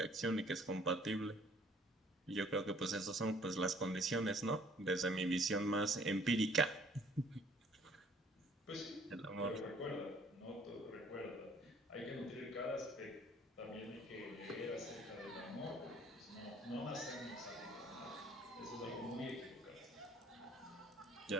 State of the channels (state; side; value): normal; both; correlation 0.57